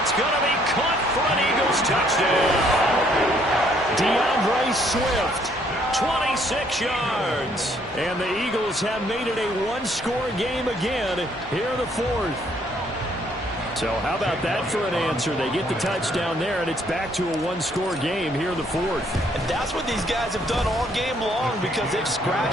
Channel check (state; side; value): normal; both; correlation 0.66